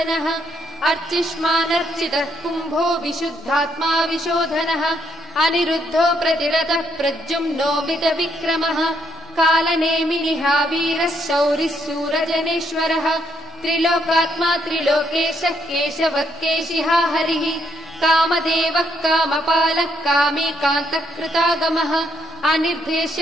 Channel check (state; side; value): noise; right; rumble, 29 dB below the sound